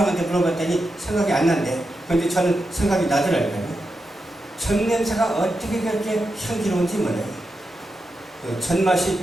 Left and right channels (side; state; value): both; normal; correlation 0.88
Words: 물어봤더니 생각이 안 난대. 그런데 저는 생각이 나더라고요. 젖 냄새가 어떻게 그렇게 향기로운지 몰라요. 그 젖 맛이